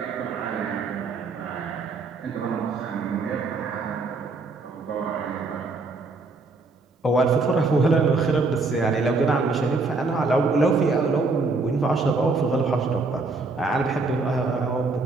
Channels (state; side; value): quieter; left; 3.7 dB